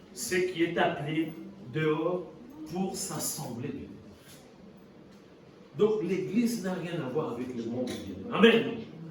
Ce qui est appelé dehors pour s'assembler. Donc l'église n'a rien à voir avec le monde. Amen.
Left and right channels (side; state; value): both; identical; correlation 1.00